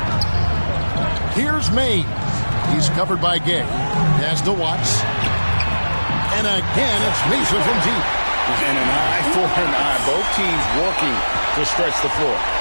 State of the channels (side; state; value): both; inverted; correlation -1.00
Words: Here's Mays. He's covered by Gay. Pass to Watts. And again, it's Mesa from deep. And an eye for an eye. Both teams working to stretch the floor.